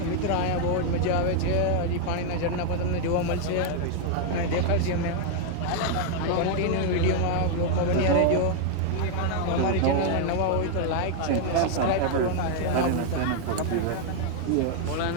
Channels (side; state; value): both; different; correlation 0.00